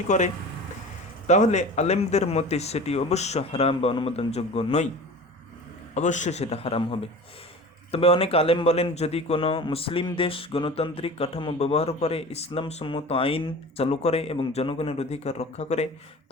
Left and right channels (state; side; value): normal; both; correlation 0.37